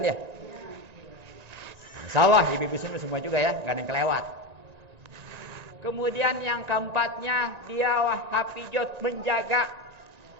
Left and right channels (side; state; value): left; late; 1.9 ms